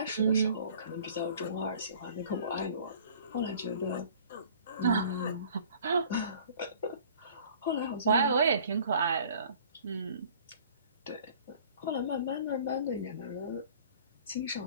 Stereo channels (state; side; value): inverted; both; correlation -0.50